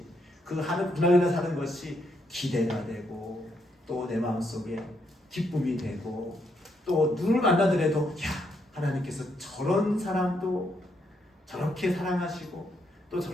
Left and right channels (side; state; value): both; normal; correlation 0.76